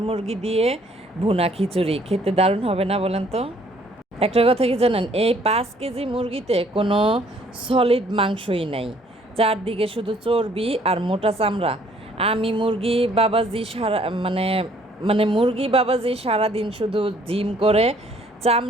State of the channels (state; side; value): normal; both; correlation 0.61